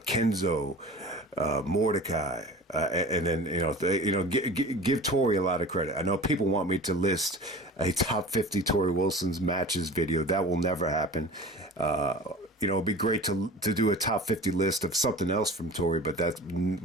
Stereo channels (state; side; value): normal; both; correlation 0.38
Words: Kenzo, Mordecai, and then give Torrie a lot of credit. I know people want me to list a top 50 Torrie Wilson's matches video. That will never happen. It'd be great to do a top 50 list of something else from Torrie, but that